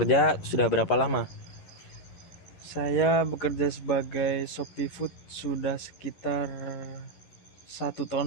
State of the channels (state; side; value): late; right; 11 ms